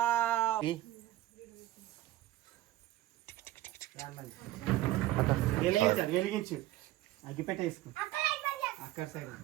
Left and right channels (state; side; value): quieter; left; 15.6 dB